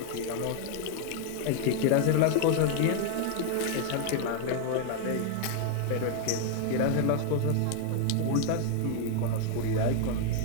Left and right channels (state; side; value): different; both; correlation 0.00